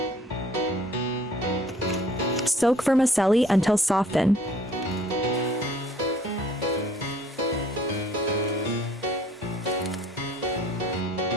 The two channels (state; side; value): normal; both; correlation 0.56